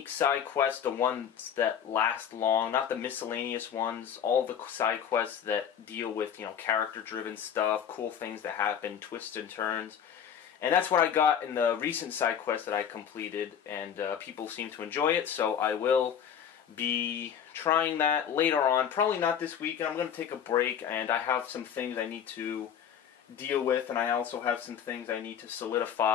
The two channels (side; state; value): right; quieter; 8.5 dB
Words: side quests, the ones that last long, not the miscellaneous ones, all the side quests that deal with, character-driven stuff, cool things that happen, twists and turns. And that's what I got in the recent side quest that I completed, and people seem to enjoy it, so I will be trying that later on. Probably not this week. I'm going to take a break, and I have some things I need to deal with, and I also have some things I need to